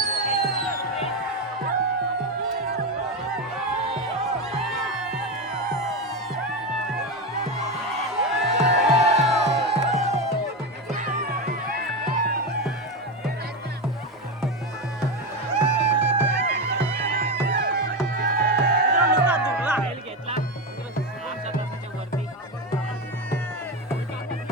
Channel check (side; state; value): both; normal; correlation 0.15